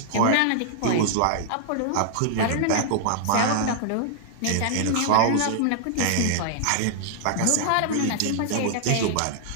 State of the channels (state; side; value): different; both; correlation -0.01